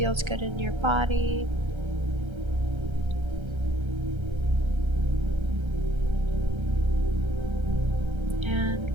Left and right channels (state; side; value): late; left; 1.3 ms